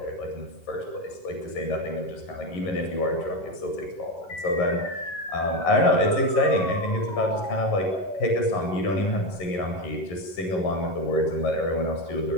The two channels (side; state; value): right; late; 11 ms